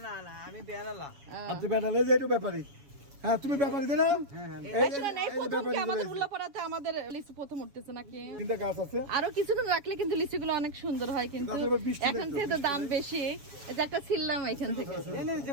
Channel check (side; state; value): left; late; 7.1 ms